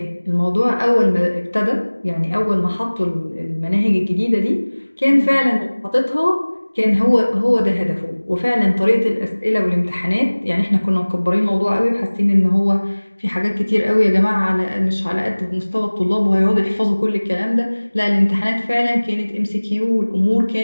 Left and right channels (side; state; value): both; inverted; correlation -1.00